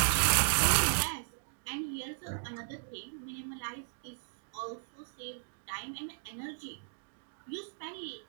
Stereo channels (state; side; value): silent; left; digital silence